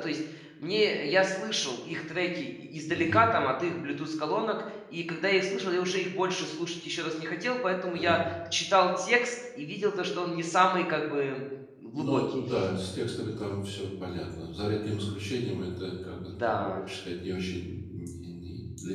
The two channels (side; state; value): both; identical; correlation 1.00